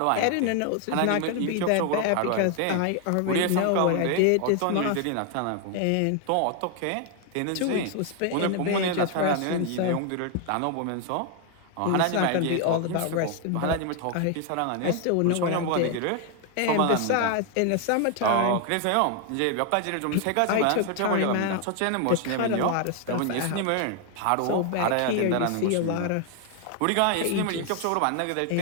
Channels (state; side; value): different; both; correlation 0.01